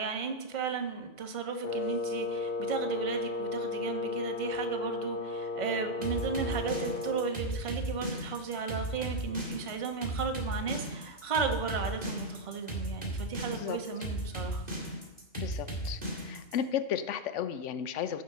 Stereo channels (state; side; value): late; right; 2.0 ms